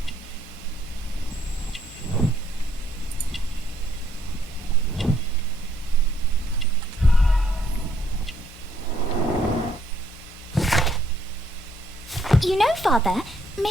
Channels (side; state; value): both; normal; correlation 0.69